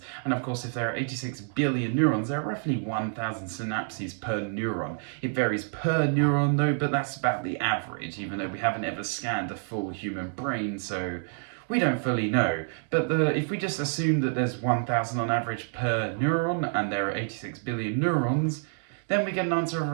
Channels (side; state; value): left; silent; 59 dB below the other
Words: and of course if there are 86 billion neurons, there are roughly 1,000 synapses per neuron. It varies per neuron though, but that's about the average, even though we haven't ever scanned a full human brain, so we don't fully know. But if we just assume that there's 1,000 on average per neuron, and there are 86 billion neurons, then we get an answer of